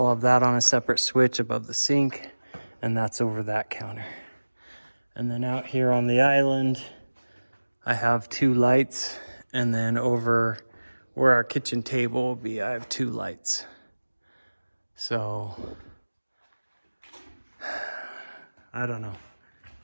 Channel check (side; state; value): both; inverted; correlation -1.00